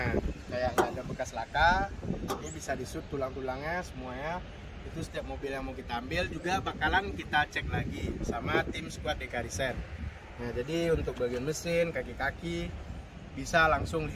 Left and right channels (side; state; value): both; identical; correlation 1.00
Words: kayak nggak ada bekas laka, ini bisa disut tulang-tulangnya semuanya. Itu setiap mobil yang mau kita ambil juga bakalan kita cek lagi sama tim squad Dekariset. Nah, jadi untuk bagian mesin, kaki-kaki bisa langsung